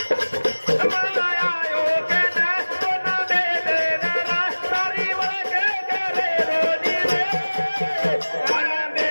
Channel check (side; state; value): both; inverted; correlation -1.00